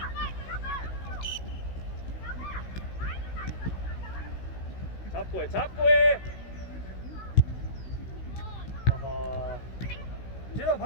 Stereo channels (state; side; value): late; right; 16 ms